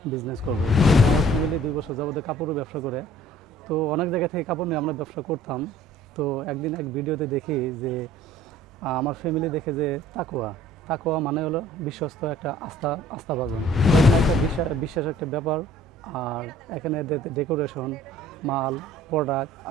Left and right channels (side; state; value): both; normal; correlation 0.53